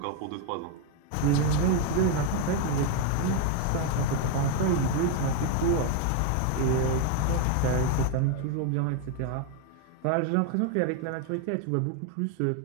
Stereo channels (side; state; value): both; different; correlation 0.01